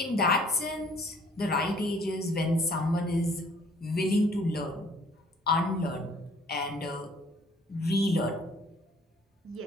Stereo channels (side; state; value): both; normal; correlation 0.58